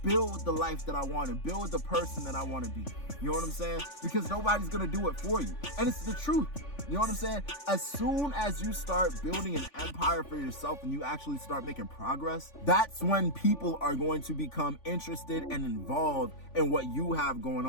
build the life that I want and build the person that I want to be. You know what I'm saying? Because nobody's gonna do it for you. And it's the truth. You know what I'm saying? As soon as you start building an empire for yourself and you actually start making progress, that's when people are going to become interested and involved in what you have going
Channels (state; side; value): late; right; 3.5 ms